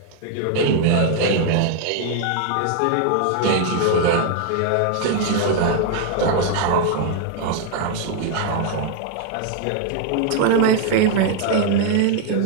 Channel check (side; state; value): both; different; correlation 0.00